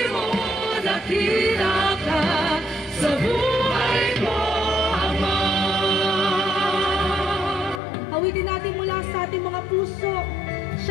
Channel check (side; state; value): right; drops out; at 7.8 s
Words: mo dakila ka sa buhay ko, Ama. Awitin natin mula sa ating mga puso.